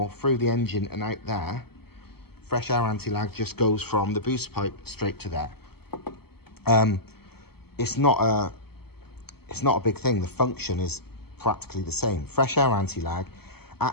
through the engine and out there, fresh air anti-lag just goes from the boost pipe straight to there. It's not a big thing. The function is practically the same. Fresh air anti-lag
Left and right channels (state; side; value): late; right; 0.96 ms